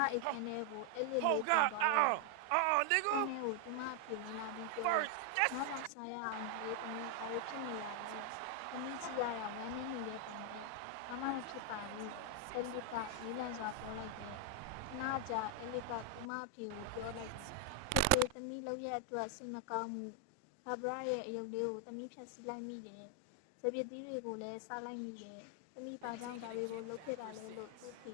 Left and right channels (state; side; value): different; both; correlation 0.00